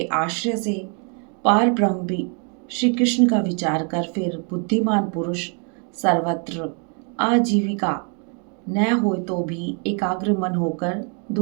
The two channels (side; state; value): left; quieter; 38.6 dB